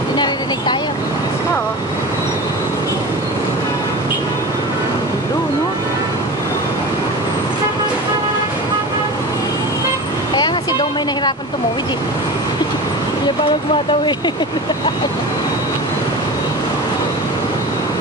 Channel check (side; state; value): both; normal; correlation 0.31